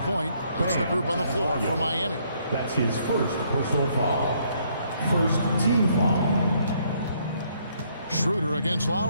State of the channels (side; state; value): both; inverted; correlation -0.69